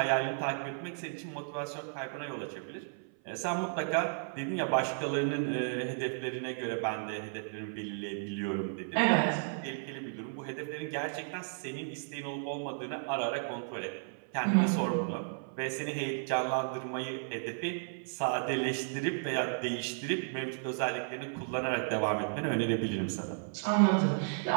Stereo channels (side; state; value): left; silent; 55 dB below the other